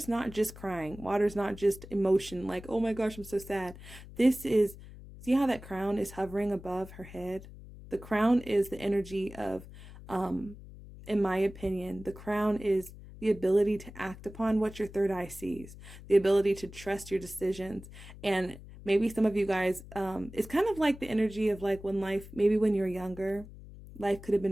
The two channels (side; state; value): left; noise; hum, 16 dB below the sound